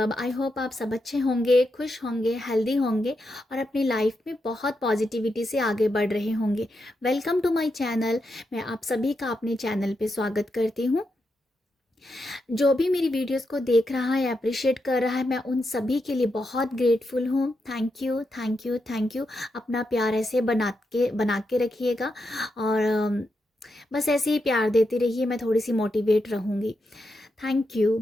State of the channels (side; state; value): both; normal; correlation 0.85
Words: आई होप आप सब अच्छे होंगे, खुश होंगे, हेल्दी होंगे और अपनी लाइफ में बहुत पॉजिटिविटी से आगे बढ़ रहे होंगे। Welcome to my channel. मैं आप सभी का अपने चैनल पे स्वागत करती हूँ। जो भी मेरी वीडियोस को देख रहा है, अप्रिशिएट कर रहा है, मैं उन सभी के लिए बहुत ग्रेटफुल हूँ। Thank you, thank you, thank you. अपना प्यार ऐसे बना के रखिएगा और बस ऐसे ही प्यार देती रहिए। मैं थोड़ी सी मोटिवेट रहूँगी। Thank you.